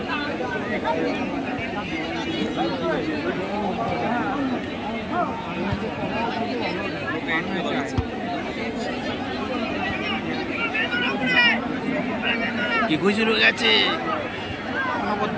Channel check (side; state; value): both; identical; correlation 1.00